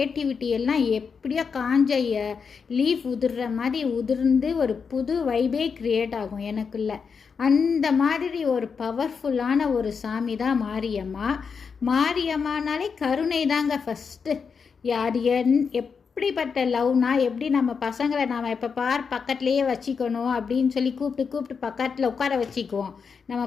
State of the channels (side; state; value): right; quieter; 5.8 dB